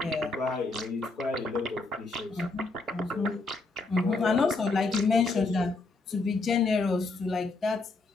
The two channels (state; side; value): quieter; right; 3.5 dB